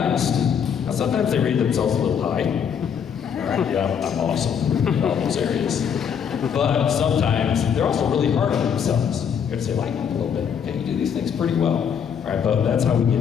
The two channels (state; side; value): quieter; right; 7.6 dB